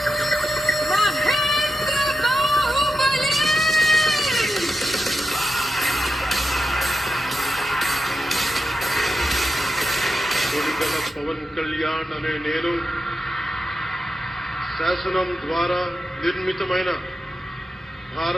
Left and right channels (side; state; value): both; normal; correlation 0.88